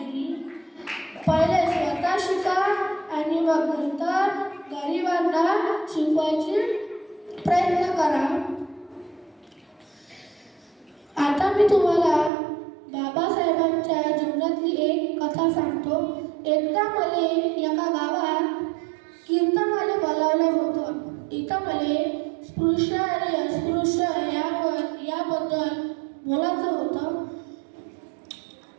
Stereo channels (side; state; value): left; drops out; at 12.3 s